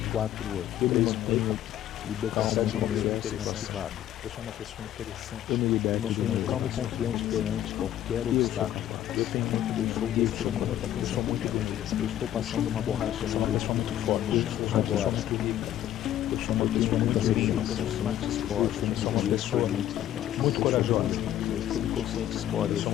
4, 8, eu me mantenho libertação de confiança e classificado. Eu sou uma pessoa interessante. Eu me liberto de um calmo e confiante perante qualquer obstáculo. Eu tenho muito desejo, eu sou uma pessoa muito bonita. Eu estou passando uma borracha, eu sou uma pessoa muito forte. Eu sou agora. Eu sou uma pessoa muito rica, eu sou uma pessoa muito corajosa. Subconsciente escolhe. Eu sou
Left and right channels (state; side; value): quieter; right; 12.0 dB